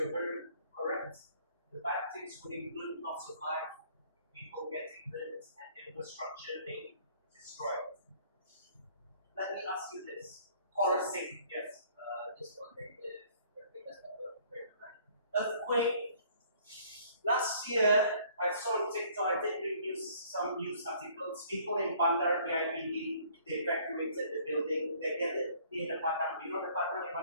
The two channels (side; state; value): both; inverted; correlation -0.58